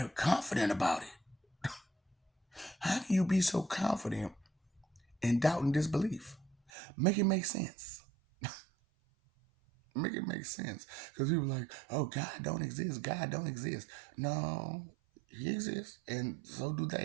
confident about it. How can you be so confident in doubt and disbelief? Make it make sense. Make it make sense. Because people are like, oh, God don't exist. God don't exist. No, he exists, and so do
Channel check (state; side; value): drops out; left; at 6.6 s